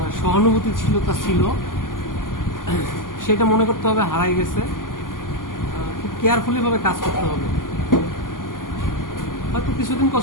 সহানুভূতি ছিল, তা ছিল, সেটা মনে করতে হবে হারাই গেছে। খুব কেয়ারফুলি ভাবে কাজ করতে হবে। হয়তো কিছুদিন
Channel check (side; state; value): right; late; 0.90 ms